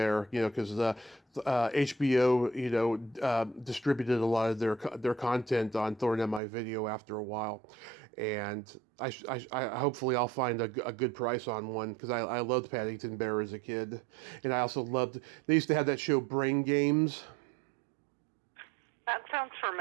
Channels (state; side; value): drops out; left; at 6.4 s